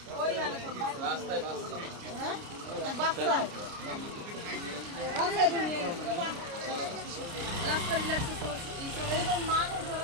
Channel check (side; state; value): left; late; 29 ms